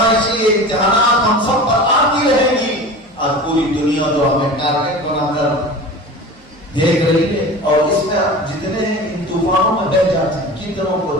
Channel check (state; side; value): normal; both; correlation 0.35